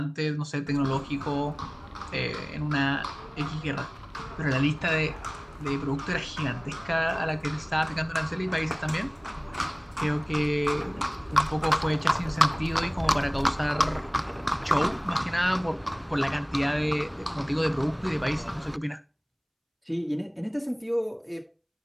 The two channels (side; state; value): both; identical; correlation 1.00